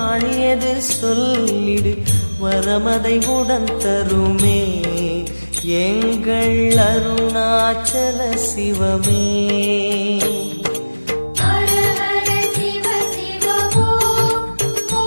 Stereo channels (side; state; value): both; inverted; correlation -1.00